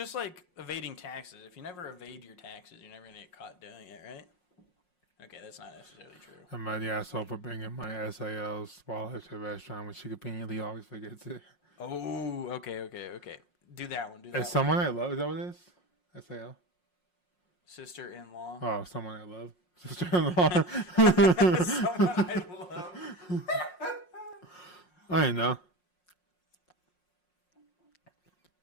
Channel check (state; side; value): late; right; 5.5 ms